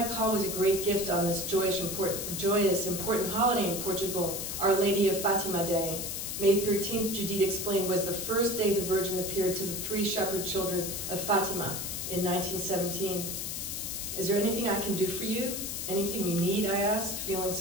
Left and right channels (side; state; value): left; noise; hiss, 4 dB below the sound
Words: call was a great gift on this joyous, important holiday in Portugal, Our Lady of Fatima Day. May 13th, Judith explained, was the first day the Virgin appeared to the 3 shepherd children of Fatima in 1917. Is there anything I can do for you? Anything you need, I asked, feeling